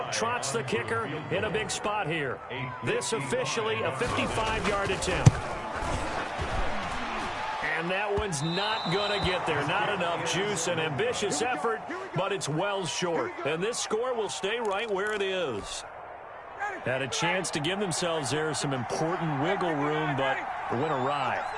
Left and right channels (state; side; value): identical; both; correlation 1.00